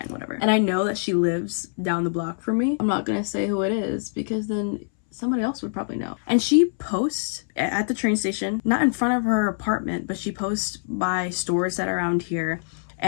whatever. And I know that she lives down the block from me. I'm not gonna say who it is because then somebody else would probably know. And she posts at the train station, not in front of her apartment, but she posts by stores that are around here.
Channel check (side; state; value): right; silent; 62 dB below the other